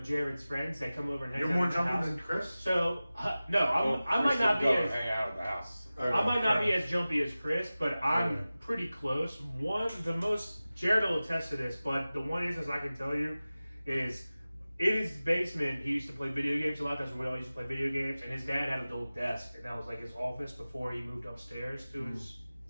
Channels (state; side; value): inverted; both; correlation -0.97